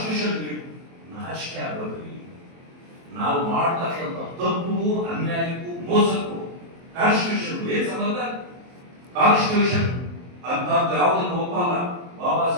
ನಾಚಿಕೆ ಆಗೋದ್ರಿ ನಾವು ಮಾಡ್ತಕ್ಕಂಥ ತಪ್ಪು, ಅನ್ಯಾಯಕ್ಕೂ, ಮೋಸಕ್ಕೂ ಕಾನ್ಸ್ಟಿಟ್ಯೂಷನ್ ಏನ್ ಸಂಬಂಧ? ಕಾನ್ಸ್ಟಿಟ್ಯೂಷನ್ ಅಂತ ಯಾವುದನ್ನು ಒಪ್ಪಲ್ಲ. ಬಾಬಾ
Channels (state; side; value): late; left; 23 ms